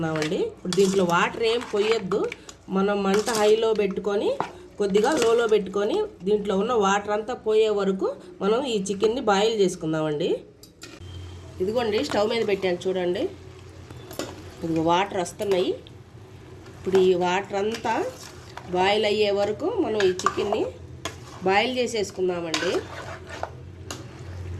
ఇప్పుడు దీంట్లో వాటర్ ఏం పోయొద్దు. మనం మంట హైలో పెట్టుకొని కొద్దిగా లోలో పెట్టుకొని దీంట్లో ఉన్న వాటర్ అంతా పోయే వరకు మనం ఈ చికెన్ని బాయిల్ చేసుకుందామండి. ఇదిగోండి, స్టవ్ మీద పెట్టాను చూడండి. ఇదిగో వాటర్ వస్తున్నాయి. ఇప్పుడు ఈ వాటర్ అంతా బాయిల్ అయ్యే వరకు మనం ఈ చికెన్ని బాయిల్ చేసేసుకుందామండి.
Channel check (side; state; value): both; identical; correlation 1.00